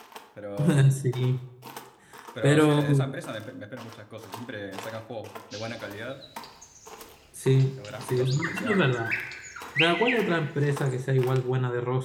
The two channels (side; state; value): both; identical; correlation 1.00